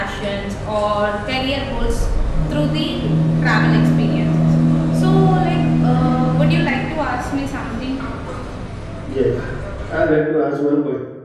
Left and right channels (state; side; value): identical; both; correlation 1.00